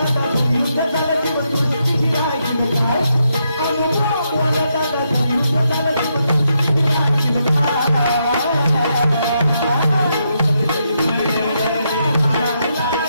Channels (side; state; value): both; inverted; correlation -0.80